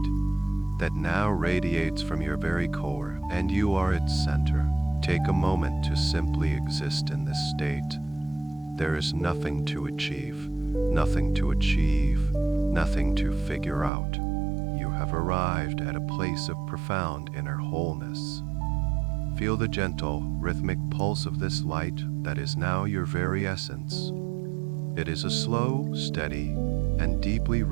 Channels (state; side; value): drops out; left; at 13.9 s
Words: that now radiates from your very core, and you are its center. Take a moment to simply exist in this state. There is nothing to achieve, nothing to achieve, nothing to figure out. You have arrived at a place of profound inner wholeness. Feel the gentle, rhythmic pulse of this light that is now your very essence. It is a slow, steady, and deeply